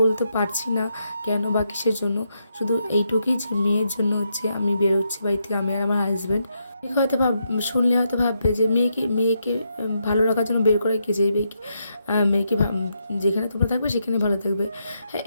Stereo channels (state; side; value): inverted; both; correlation -0.80